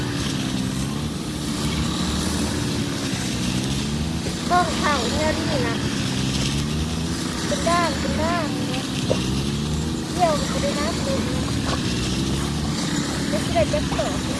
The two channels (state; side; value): identical; both; correlation 1.00